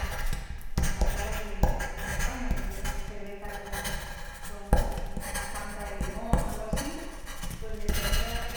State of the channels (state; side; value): identical; both; correlation 1.00